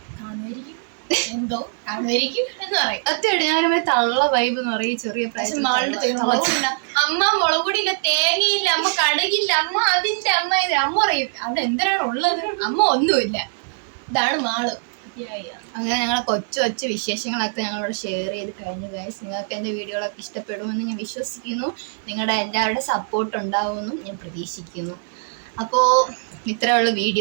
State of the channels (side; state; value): left; silent; 61 dB below the other